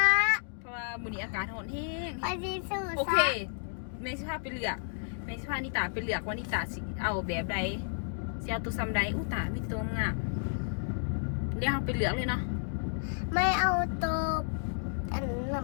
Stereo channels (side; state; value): right; silent; digital silence